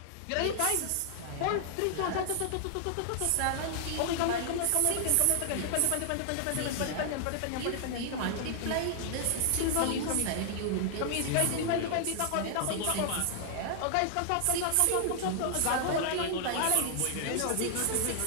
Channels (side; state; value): both; different; correlation 0.00